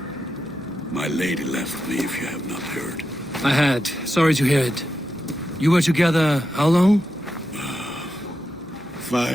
My lady left me, if you have not heard. I had. Sorry to hear it. You were together how long?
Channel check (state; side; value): noise; left; hum, 29 dB below the sound